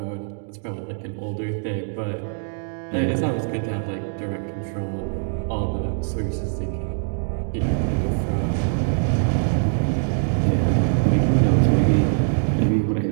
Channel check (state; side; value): silent; left; digital silence